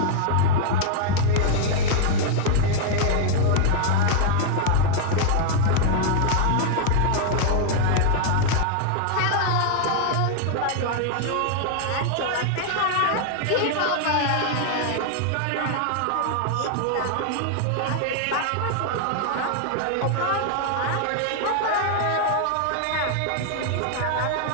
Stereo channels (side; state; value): both; different; correlation 0.00